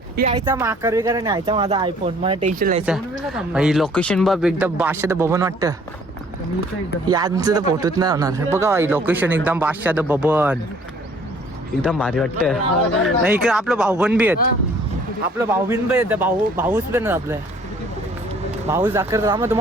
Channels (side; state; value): both; normal; correlation 0.57